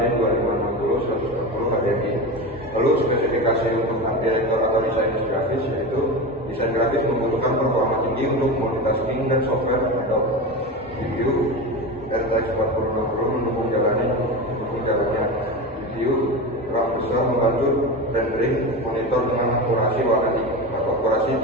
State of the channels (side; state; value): both; normal; correlation 0.23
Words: 2560 120 HDMI. Lalu spesifikasi untuk art director atau desain grafis yaitu desain grafis membutuhkan performa tinggi untuk multitasking dan software Adobe GPU RTX 4060 mendukung jalannya GPU RAM besar membantu rendering monitor dengan akurasi